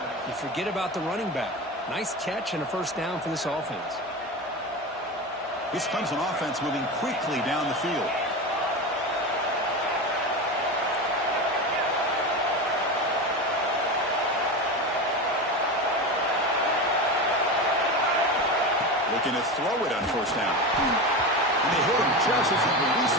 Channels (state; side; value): normal; both; correlation 0.23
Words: You forget about the running back. Nice catch and a first down for this offense. This Clemson offense moving quickly down the field. Looking to throw it on first down. And they hit him just as he